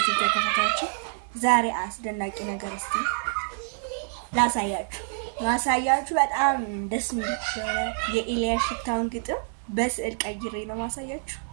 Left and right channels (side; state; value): left; silent; 60 dB below the other